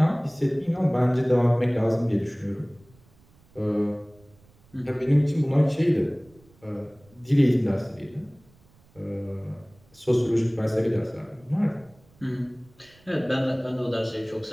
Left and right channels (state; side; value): noise; right; rumble, 30 dB below the sound